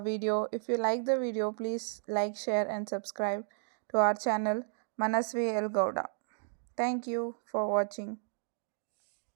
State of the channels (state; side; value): silent; left; digital silence